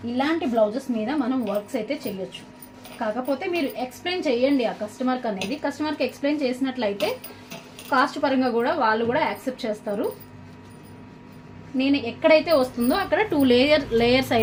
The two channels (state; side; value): identical; both; correlation 1.00